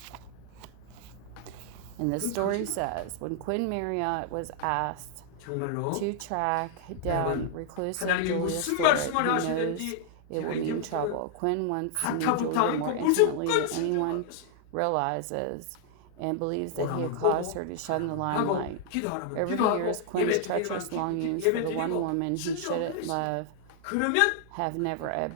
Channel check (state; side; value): different; both; correlation 0.00